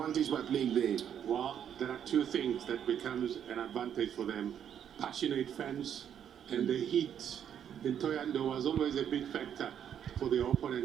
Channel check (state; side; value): quieter; left; 9.1 dB